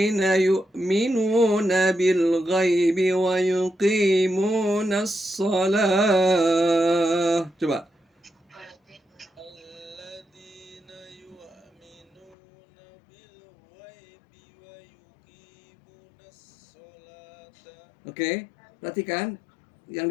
yu'minuna bil ghaibi wa yuqimuna shalah. Coba. Alladzina yu'minuna bil ghaibi wa yuqimuna sholata. Oke, perhatikan yang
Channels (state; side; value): drops out; right; at 12.4 s